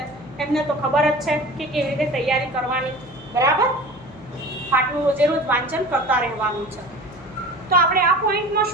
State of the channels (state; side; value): noise; left; hum, 21 dB below the sound